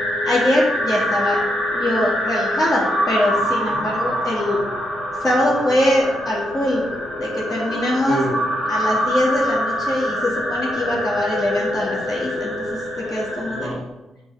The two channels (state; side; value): normal; both; correlation 0.81